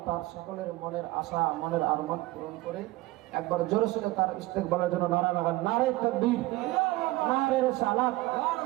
তার সকলের মনের আশা, মনের আরমান পূরণ করে। একবার জোরে সোরে তার ইস্তেকবালের জন্য নারা লাগান, নারে তাকবীর, নারে রিসালাত।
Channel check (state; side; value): quieter; left; 19.2 dB